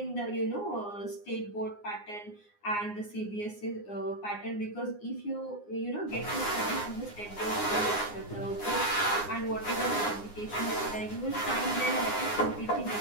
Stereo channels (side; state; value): right; late; 9.7 ms